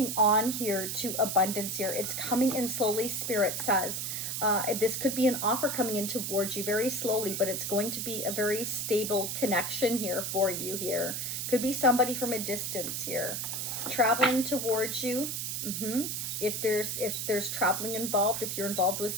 on here to abundance here. It's coming in slowly, Spirit says. This could be an offer coming in towards you very slowly, but it's going to be a very stable connection here for you here. Could be somebody from a distance here. Traveling towards you. If there's traveling involved, if you're involved with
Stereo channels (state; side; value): noise; right; hiss, 3 dB below the sound